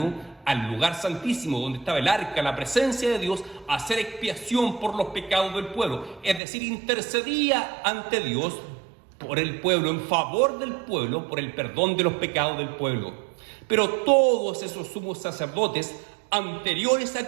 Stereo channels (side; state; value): left; drops out; at 6.4 s